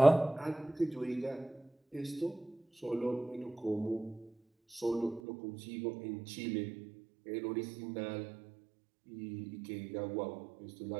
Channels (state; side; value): drops out; left; at 5.2 s